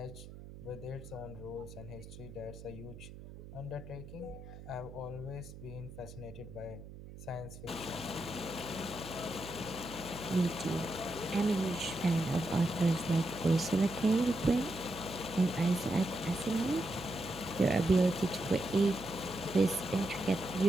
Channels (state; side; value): noise; right; hum, 14 dB below the sound